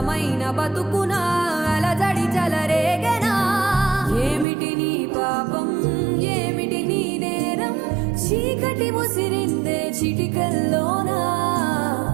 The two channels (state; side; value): drops out; left; at 4.5 s